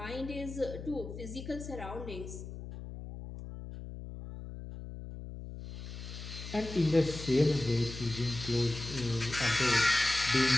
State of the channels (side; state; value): left; noise; hum, 10 dB below the sound